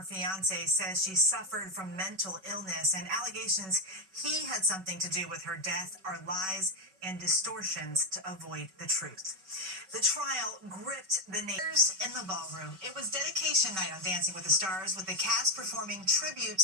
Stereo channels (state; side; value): late; left; 5.3 ms